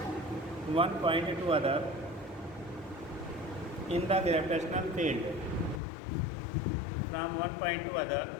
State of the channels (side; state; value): right; drops out; at 5.8 s